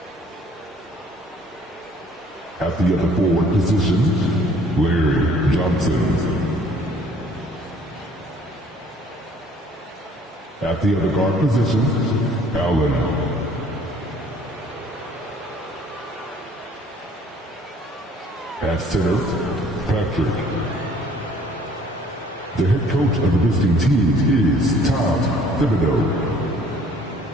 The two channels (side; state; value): both; normal; correlation 0.57